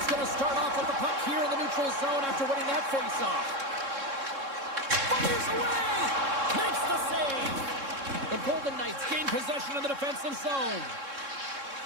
going to start off with the puck here in the neutral zone after winning that face-off. Fires away! Makes the save! The Golden Knights gain possession of the defensive zone.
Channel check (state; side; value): late; left; 3.6 ms